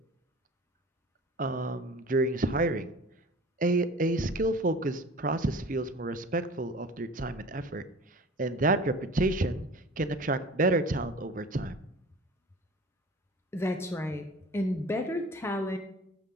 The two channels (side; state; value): both; normal; correlation 0.41